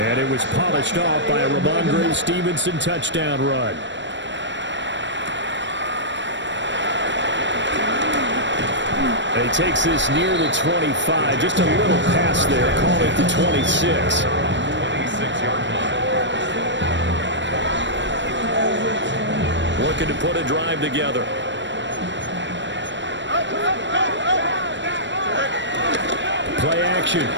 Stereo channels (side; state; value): left; late; 0.53 ms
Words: it was polished off by a Ramondre Stevenson touchdown run. And he takes this near the 25. Just a little pass there. Call it the 26. 26-yard line. Looking to put a drive together. Play action.